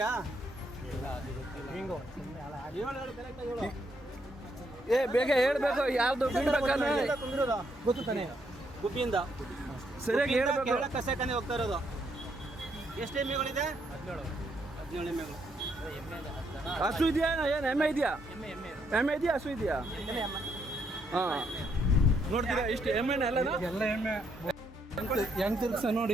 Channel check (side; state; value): both; normal; correlation 0.74